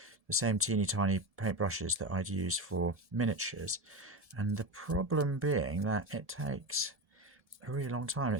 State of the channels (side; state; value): left; late; 1.7 ms